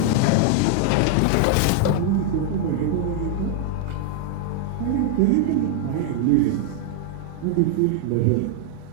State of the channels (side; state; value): both; different; correlation 0.00